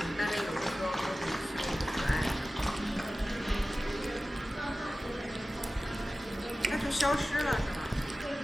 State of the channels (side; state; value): both; normal; correlation 0.96